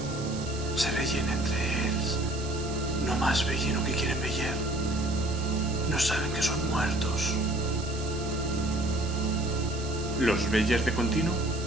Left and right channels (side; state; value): right; noise; hiss, 13 dB below the sound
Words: Se veien entre ells. No más veien lo que quieren ver. No saben que son muertos. ¿Los veis de continuo?